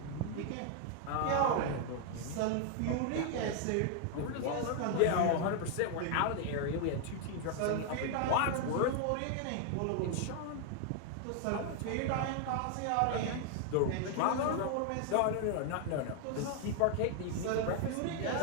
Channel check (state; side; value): different; both; correlation 0.00